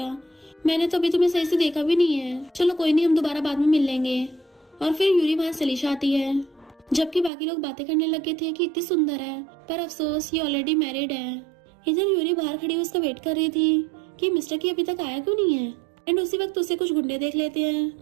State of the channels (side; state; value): left; drops out; at 7.3 s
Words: मैंने तो अभी तुम्हें सही से देखा भी नहीं है। चलो कोई नहीं, हम दोबारा बाद में मिल लेंगे। और फिर यूरी वहाँ चली जाती है। जबकि बाकी लोग बातें करने लगे थे कि इतनी सुंदर है, पर अफसोस ये ऑलरेडी मैरिड है। इधर यूरी बाहर खड़ी उसका वेट कर रही थी कि मिस्टर की अभी तक आया क्यों नहीं है। एंड उसी वक्त उसे कुछ गुंडे देख लेते हैं